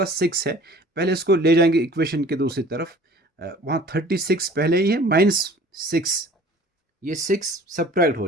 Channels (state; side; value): normal; both; correlation 0.48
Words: 6 है, पहले इसको ले जाएंगे इक्वेशन के दूसरी तरफ, वहाँ 36 पहले ही है, माइनस 6, ये 6 सब्ट्रैक्ट